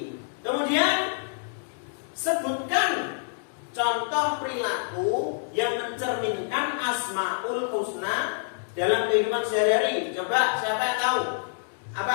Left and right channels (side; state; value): right; silent; digital silence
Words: Kemudian sebutkan contoh perilaku yang mencerminkan Asmaul Husna dalam kehidupan sehari-hari. Coba, siapa yang tahu?